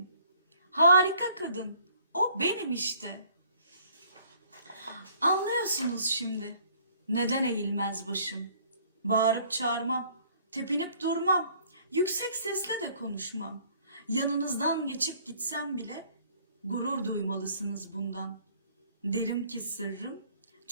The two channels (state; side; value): inverted; both; correlation -0.59